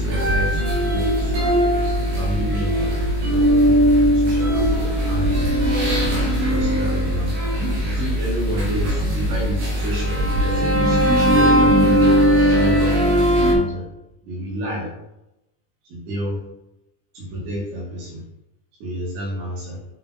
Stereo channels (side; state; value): left; late; 20 ms